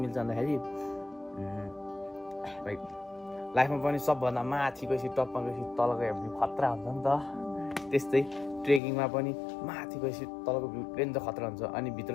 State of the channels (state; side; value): drops out; right; at 8.8 s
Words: मिल्छ भन्दाखेरि भाइ लाइफमा पनि सबभन्दा माथि गएपछि टपमा गएपछि तलको भ्यू खतरा हुन्छ नि त त्यस्तै ट्रेकिङमा पनि माथि गएपछि तलको भ्यू रेन्ज खतरा हुन्छ अनि भित्र